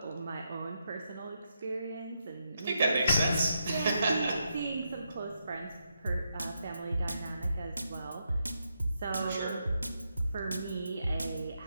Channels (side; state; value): both; inverted; correlation -0.83